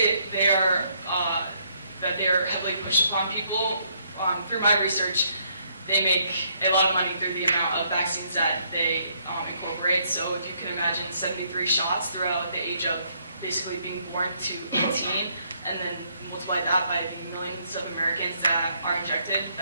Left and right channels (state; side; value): inverted; both; correlation -0.70